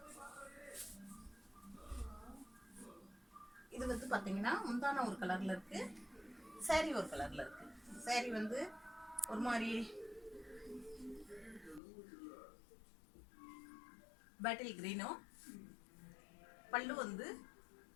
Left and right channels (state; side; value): drops out; right; at 11.8 s